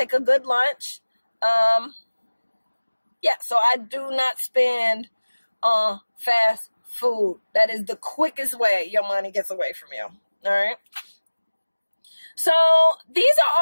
a good lunch. Yeah, so I do not spend on fast food. That is the quickest way your money gets away from you. All right. So these are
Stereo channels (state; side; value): inverted; both; correlation -1.00